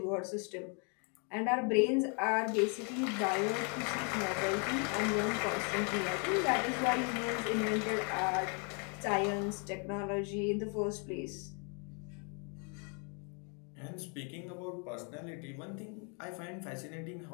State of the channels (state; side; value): quieter; right; 37.6 dB